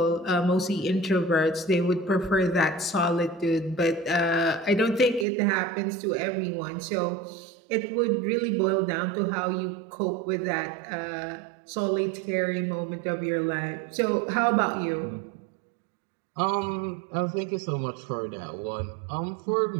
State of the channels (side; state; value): left; drops out; at 5.2 s